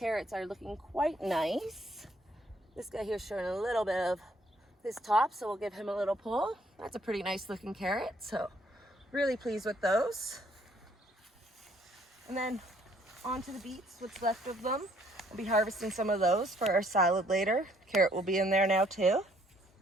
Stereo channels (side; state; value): both; normal; correlation 0.65